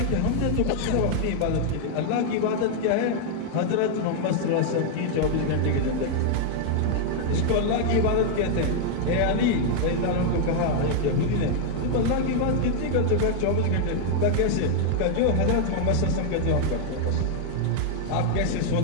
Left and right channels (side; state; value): both; different; correlation 0.00